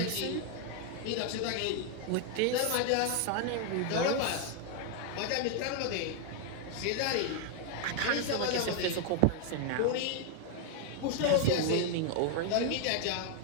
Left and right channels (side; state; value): both; different; correlation 0.00